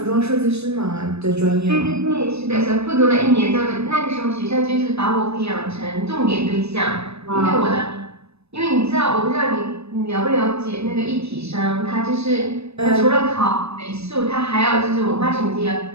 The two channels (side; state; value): left; late; 0.79 ms